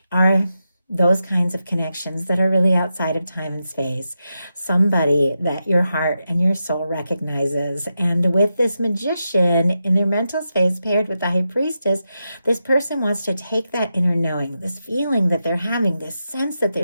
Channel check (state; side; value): inverted; both; correlation -0.88